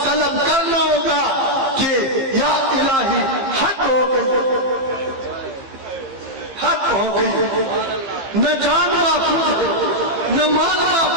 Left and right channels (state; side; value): late; left; 15 ms